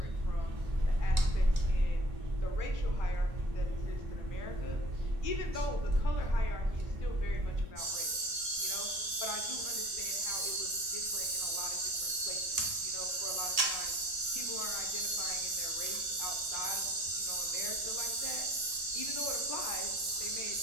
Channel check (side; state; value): left; late; 1.5 ms